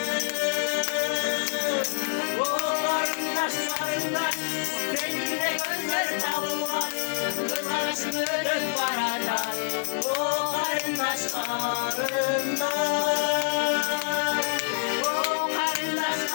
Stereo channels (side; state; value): right; silent; digital silence